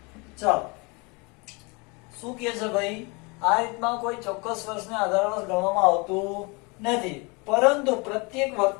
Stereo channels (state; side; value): quieter; right; 29.1 dB